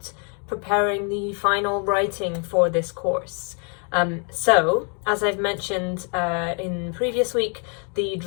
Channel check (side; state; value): right; quieter; 39.6 dB